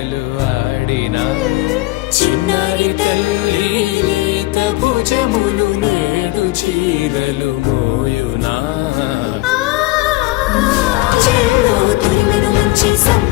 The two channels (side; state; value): right; quieter; 19.4 dB